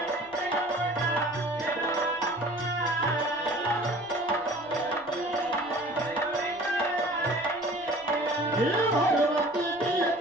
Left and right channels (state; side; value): noise; right; rumble, 30 dB below the sound